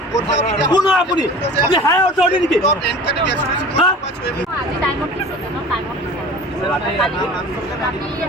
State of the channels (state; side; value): normal; both; correlation 0.40